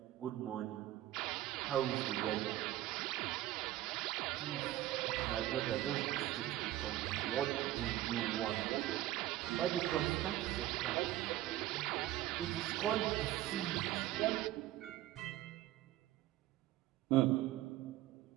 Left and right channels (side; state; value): left; quieter; 14.9 dB